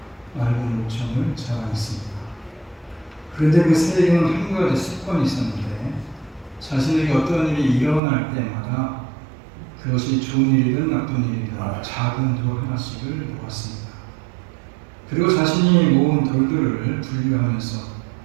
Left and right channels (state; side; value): drops out; left; at 8.0 s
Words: 맑은 목청을 자랑했습니다. 그런데 그 새에게는 한 가지 습관이 있었는데 자신에게 어떤 일이 일어날 때마다 그것이 좋은 일이든 나쁜 일이든 작은 돌 하나씩을 모았습니다. 그리고 자신이 모은 돌들을 분류하면서